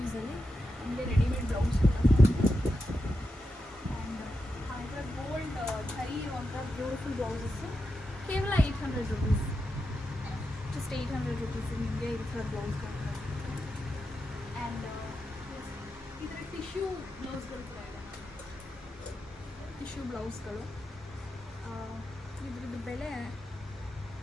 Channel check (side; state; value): both; normal; correlation 0.88